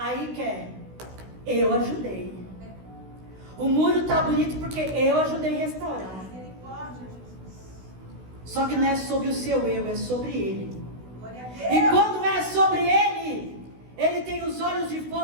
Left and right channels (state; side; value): late; left; 16 ms